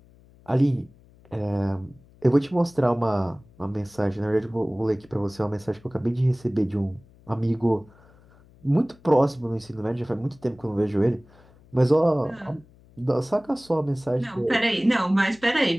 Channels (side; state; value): left; noise; hum, 27 dB below the sound